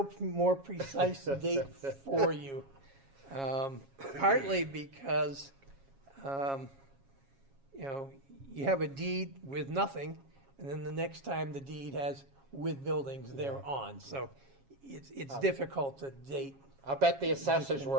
more precise date for you. Partly because, you have a deed with nothing, and then the next time the deed has with buildings thereon. So it's difficult to date. I'll bet the assessors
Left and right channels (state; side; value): late; left; 7.3 ms